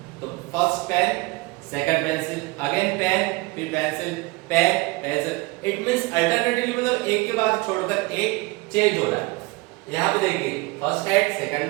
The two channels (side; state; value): left; quieter; 23.9 dB